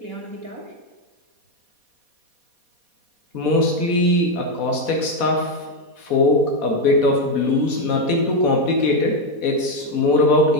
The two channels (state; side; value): late; left; 4.2 ms